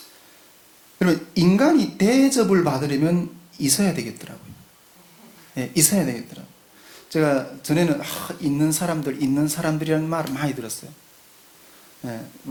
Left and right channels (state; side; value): identical; both; correlation 1.00